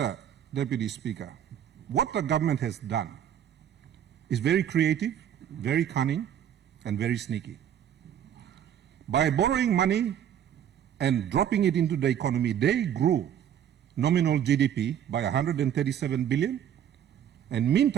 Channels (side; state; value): left; quieter; 9.8 dB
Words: Deputy Speaker, what the government has done is very creative, very cunning, and very sneaky. By borrowing money and dropping it into the economy, they grew nominal GDP by 137 billion, and